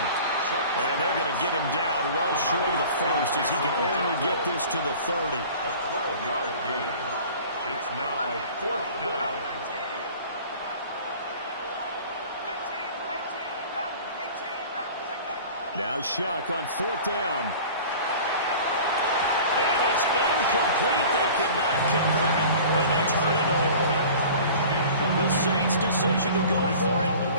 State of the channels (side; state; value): both; inverted; correlation -0.42